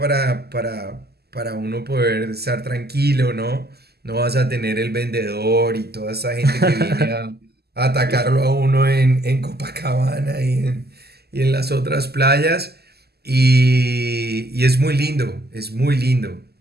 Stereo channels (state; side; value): late; left; 0.46 ms